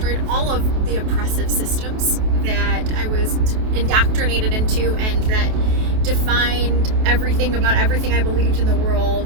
all of the oppressive systems that I was indoctrinated into and that defined everything about everything I believed in the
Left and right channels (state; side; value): late; left; 28 ms